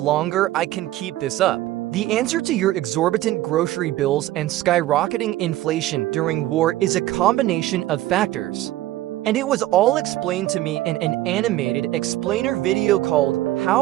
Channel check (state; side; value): quieter; left; 15.4 dB